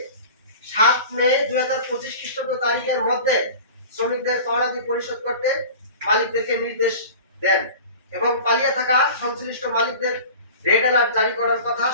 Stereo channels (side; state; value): both; inverted; correlation -0.38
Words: 7 মে 2025 খ্রিস্টাব্দ তারিখের মধ্যে শ্রমিকদের পাওনাদি পরিশোধ করতে মালিকদেরকে নির্দেশ দেন এবং পালিয়ে থাকা সংশ্লিষ্ট মালিকদের রেড অ্যালার্ট জারি করার কথা